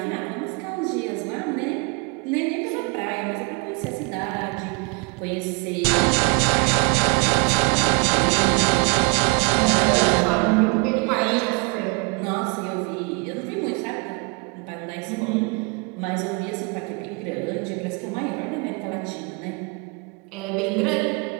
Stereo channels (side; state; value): left; quieter; 31.1 dB